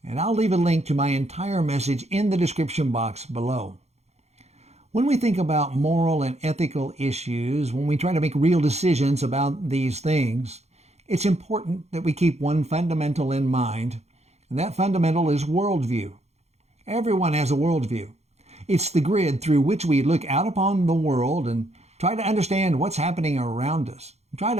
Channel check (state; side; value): late; left; 0.31 ms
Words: and I'll leave a link to my entire message in the description box below. When we think about moral and ethical issues, when we try to make real decisions about these things, it's important that we keep one fundamental in mind, and that fundamental is worldview. Everyone has a worldview. It's the grid through which we look out upon the world and try to understand what's happening around us. Try